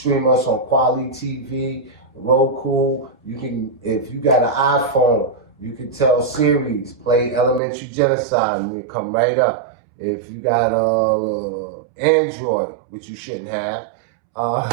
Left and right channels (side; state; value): left; drops out; at 7.6 s